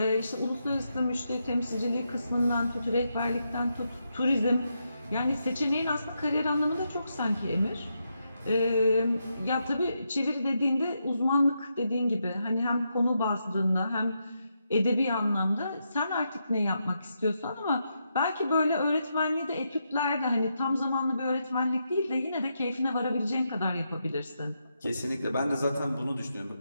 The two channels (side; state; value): both; inverted; correlation -0.83